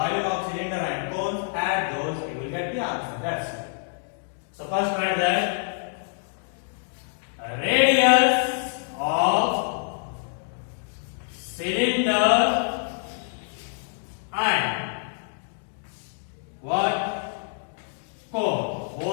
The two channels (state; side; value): silent; right; digital silence